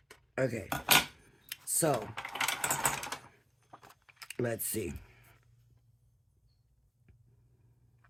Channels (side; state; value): both; identical; correlation 1.00